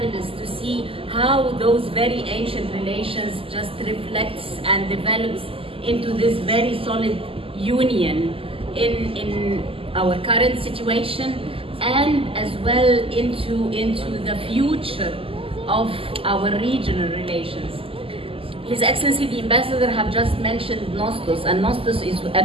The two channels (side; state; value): left; late; 0.26 ms